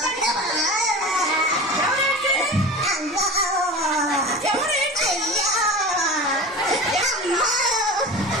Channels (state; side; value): normal; both; correlation 0.32